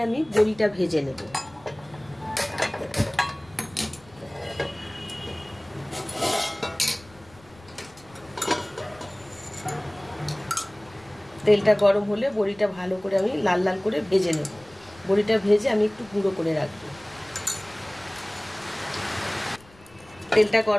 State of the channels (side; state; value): left; noise; rumble, 25 dB below the sound